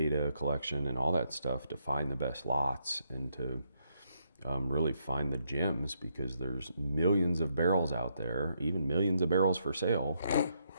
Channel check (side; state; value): both; inverted; correlation -0.77